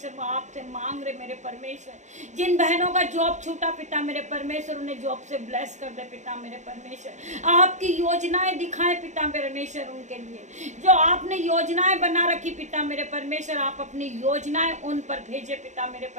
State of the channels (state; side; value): late; left; 0.34 ms